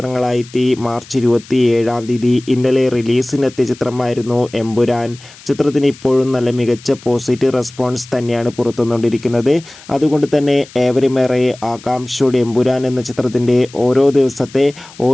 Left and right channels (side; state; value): left; noise; hiss, 21 dB below the sound